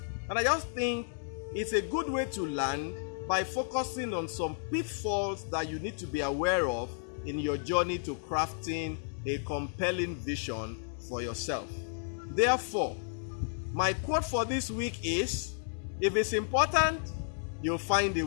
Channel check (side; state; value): right; silent; 56 dB below the other